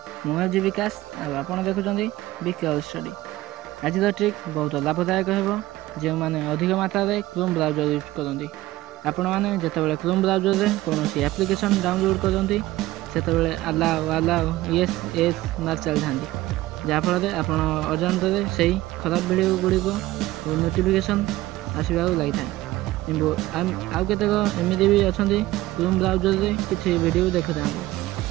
मुझे विकास आप देखुं विकास study आज ट्रिक बहुत लाभदायक हो जो मैंने अधिक मात्रा में क्रोम ब्राउजर यूज करती आपण मैंने जिते क्रोम ब्राउजर में कौन एप्लिकेशन डाउनलोड करते से अलाउ येस येस मार चली था जहाँफल आप अजाणत से खराब वीडियो गुड़िक नोटिफिकेशन आसवा लगी था कि आउ केतक एमती भी अच्छा क्रोम ब्राउजर में किसी वीडियो देखु था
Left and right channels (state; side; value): quieter; left; 17.0 dB